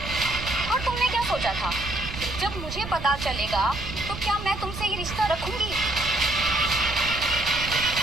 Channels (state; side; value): noise; right; rumble, 9 dB below the sound